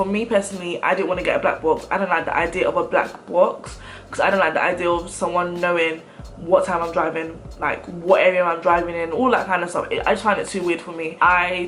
me personally, I didn't want to get a black box. I don't like the idea of a black box because I don't like the idea of someone knowing what time I'm driving, like what area I'm driving in, all that kind of stuff. I just find it too weird for me.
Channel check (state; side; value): identical; both; correlation 1.00